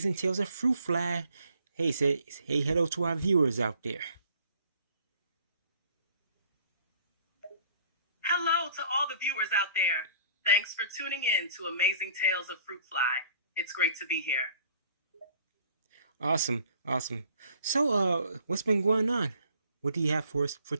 Tales of Fruit Fly. Hey, hey, hello to our viewers out there. Hello to all the viewers out there. Thanks for tuning in to Amazing Tales of Fruit Fly. It's great to be here. Awesome, awesome. So, what's been going on? What do you have for us for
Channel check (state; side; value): inverted; both; correlation -0.55